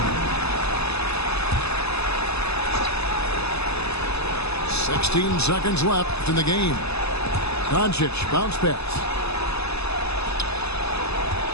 "16 seconds left in the game. Doncic, bounce pass.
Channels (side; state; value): right; late; 0.79 ms